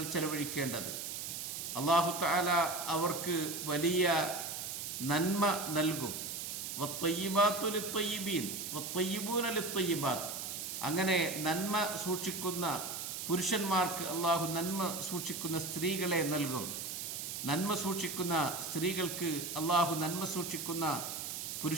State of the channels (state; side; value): noise; right; hiss, 5 dB below the sound